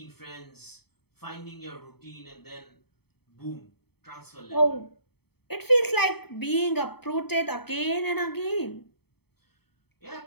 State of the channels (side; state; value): right; late; 0.97 ms